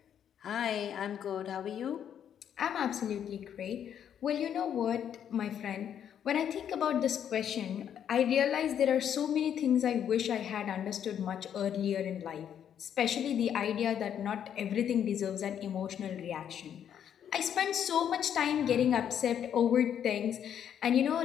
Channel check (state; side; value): quieter; right; 9.1 dB